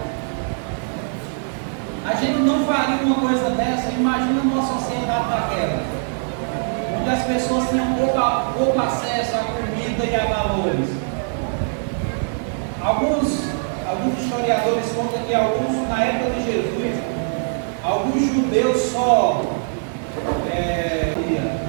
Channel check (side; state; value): left; silent; 64 dB below the other